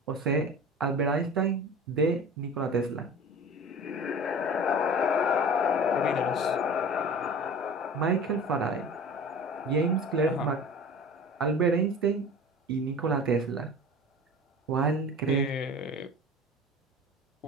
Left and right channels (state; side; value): normal; both; correlation 0.38